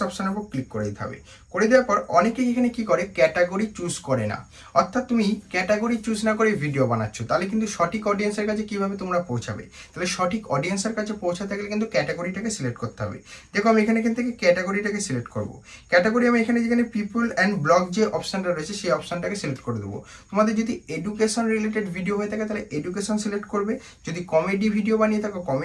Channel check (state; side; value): identical; both; correlation 1.00